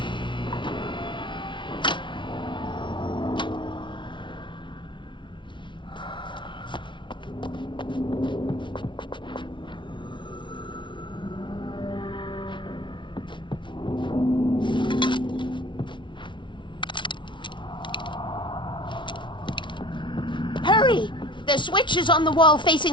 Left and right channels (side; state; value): right; late; 0.24 ms